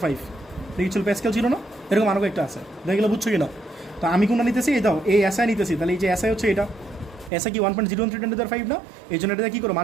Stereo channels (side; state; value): left; drops out; at 7.3 s